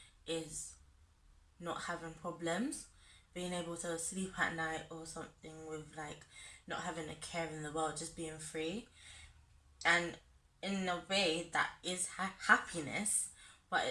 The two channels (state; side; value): identical; both; correlation 1.00